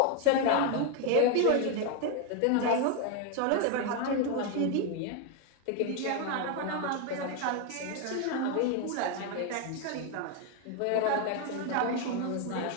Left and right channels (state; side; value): different; both; correlation 0.01